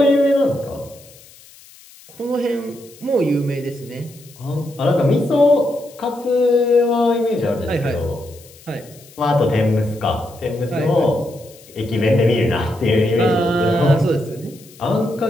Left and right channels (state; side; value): noise; left; hiss, 23 dB below the sound